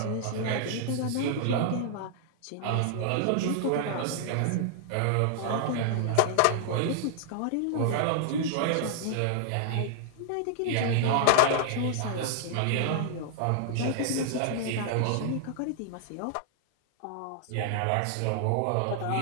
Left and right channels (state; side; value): different; both; correlation -0.01